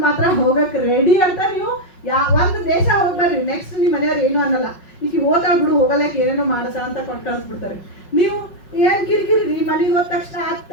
ಮಾತ್ರ ಹೋಗಕ್ಕೆ ರೆಡಿ ಅಂತ. ನೀವು ಒಂದು ದೇಶ ಹೋಗ್ಬರ್ರಿ, ನೆಕ್ಸ್ಟ್ ನಿಮ್ಮ ಮನೆಯವ್ರು ಏನು ಅನ್ನಲ್ಲ, ಈಗ ಓದ್ತಾ ಬಿಡು ಹೋಗಲಕ್ಕೆ ಏನೇನೋ ಮಾಡಸ ಅಂತ ಕೊಟ್ಟು ಕಳಿಸ್ಬಿಡ್ತಾರೆ. ನೀವು ಏನ್ ಕಿರಿಕಿರಿ, ಮನೆಗೆ ಹೋದ ತಕ್ಷಣ ಅದು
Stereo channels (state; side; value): late; right; 5.4 ms